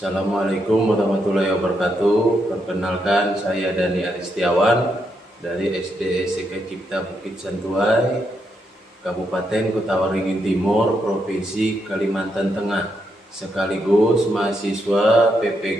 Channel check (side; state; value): both; normal; correlation 0.80